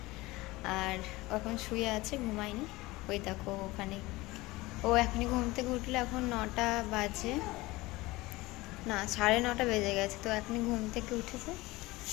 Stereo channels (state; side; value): quieter; right; 20.5 dB